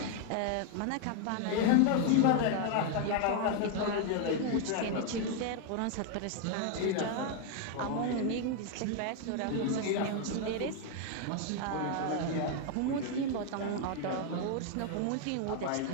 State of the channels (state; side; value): different; both; correlation 0.00